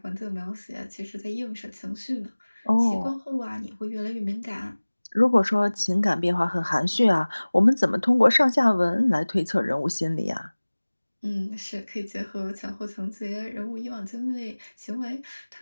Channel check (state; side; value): inverted; both; correlation -1.00